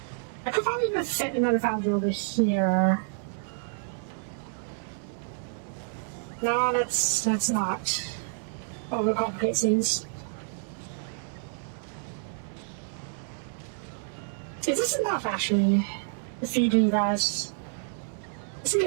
I could probably even fit another foundry over here. No, let's not overcomplicate things. Is this enough, actually, to feed you guys? I think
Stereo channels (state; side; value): silent; left; 59 dB below the other